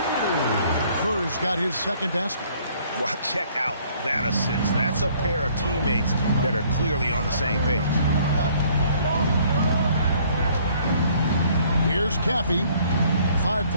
Kerr's got his second basket. Well, check out that assist. That's a pair of teammates that are clearly on the same page. Here's Caffey. 5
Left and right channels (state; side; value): inverted; both; correlation -0.60